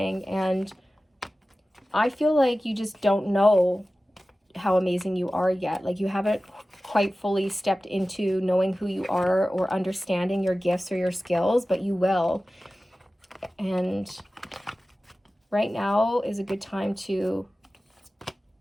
and I feel like you just don't know how amazing you are yet. Like you haven't quite fully stepped into knowing who you are or understanding your gifts or your skills, but you will. And right now is a good time to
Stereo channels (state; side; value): normal; both; correlation 0.96